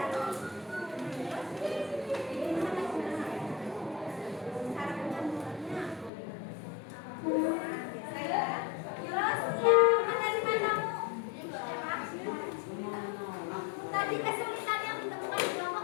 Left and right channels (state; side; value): drops out; right; at 6.1 s